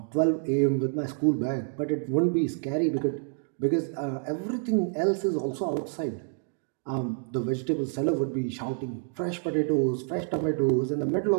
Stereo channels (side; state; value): left; silent; 56 dB below the other